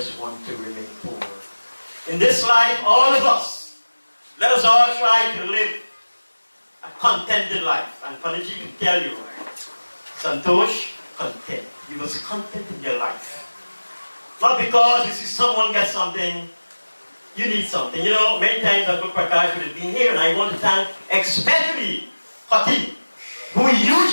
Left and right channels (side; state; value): both; inverted; correlation -1.00